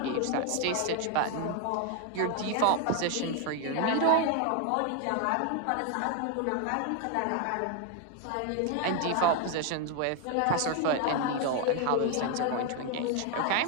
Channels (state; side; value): different; both; correlation 0.01